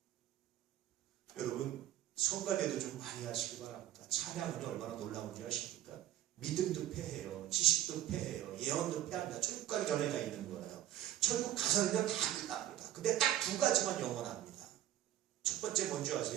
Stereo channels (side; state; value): left; quieter; 12.7 dB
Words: 여러분, 성가대도 좀 많이 하시기 바랍니다. 찬양은 얼마나 놀라운지 아십니까? 믿음도 패해요. 지식도 패해요. 예언도 패합니다. 천국 가기 전에 다 있는 거예요. 천국 가서는요 다 끝납니다. 근데 딱 두 가지만 영원합니다. 첫 번째 뭔지